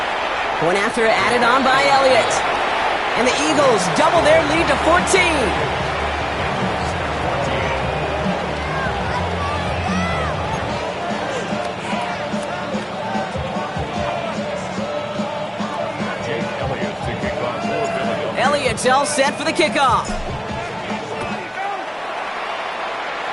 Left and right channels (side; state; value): both; identical; correlation 1.00